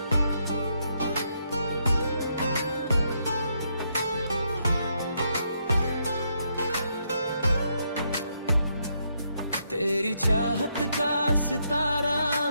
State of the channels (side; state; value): both; inverted; correlation -0.77